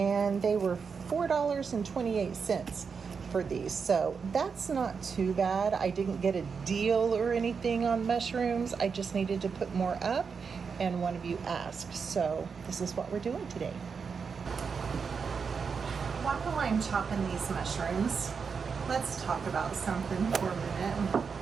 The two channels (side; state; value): left; quieter; 5.7 dB